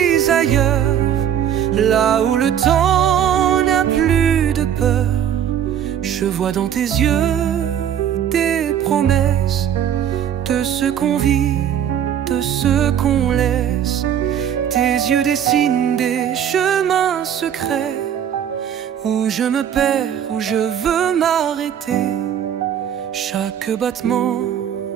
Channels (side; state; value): left; quieter; 9.4 dB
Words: ailleurs, là où le temps n'a plus de peur. Je vois dans tes yeux des promesses, de ce qu'on vit, de ce qu'on laisse. Tes yeux dessinent des chemins secrets, où je me perds, où je veux m'arrêter. Chaque battement